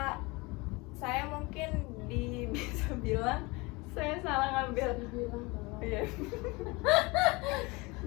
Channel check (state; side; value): quieter; right; 24.9 dB